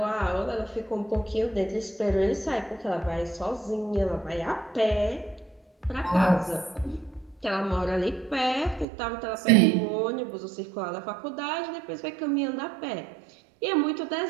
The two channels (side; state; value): left; drops out; at 8.8 s